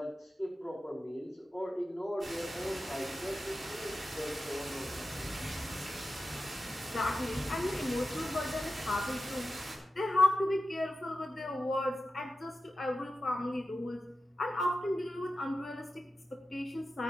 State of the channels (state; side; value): normal; both; correlation 0.92